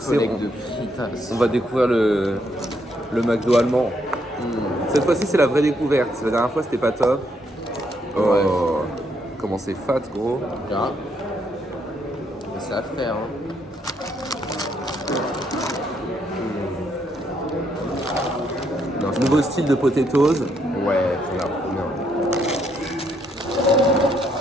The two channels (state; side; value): normal; both; correlation 0.74